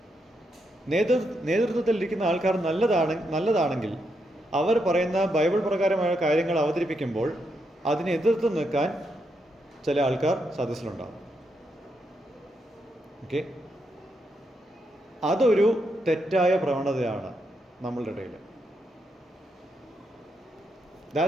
നേതൃത്വത്തിലിരിക്കുന്ന ആൾക്കാർ നല്ലതാണെങ്കിൽ അവർ പറയുന്ന ബൈബിൾ പ്രകാരമായ കാര്യങ്ങൾ അവതരിപ്പിക്കുമ്പോൾ അതിനെ എതിർത്ത് നിൽക്കാൻ ചില ആൾക്കാർ സദസ്സിലുണ്ടാകും. ഓക്കെ, അതൊരു തെറ്റായ പ്രവണതയാണ് നമ്മളുടെ ഇടയിൽ.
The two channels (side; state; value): both; normal; correlation 0.81